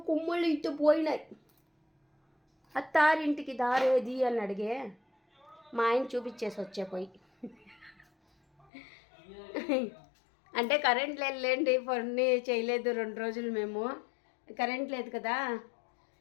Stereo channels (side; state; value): right; drops out; at 8.7 s